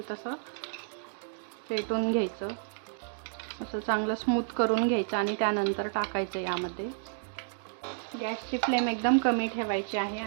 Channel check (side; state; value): left; silent; digital silence